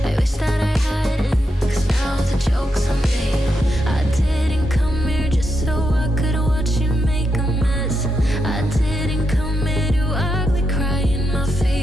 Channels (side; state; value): both; normal; correlation 0.83